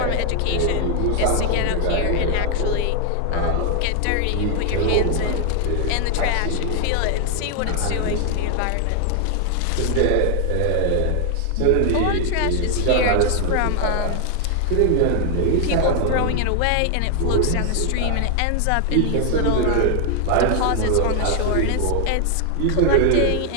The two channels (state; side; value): different; both; correlation 0.00